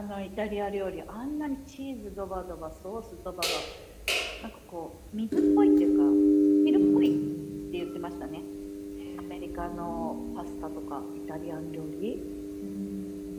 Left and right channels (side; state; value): both; identical; correlation 1.00